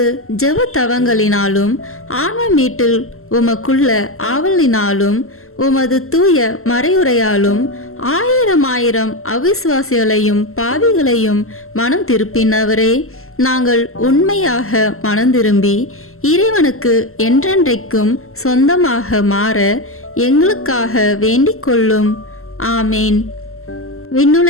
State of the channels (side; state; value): right; late; 0.62 ms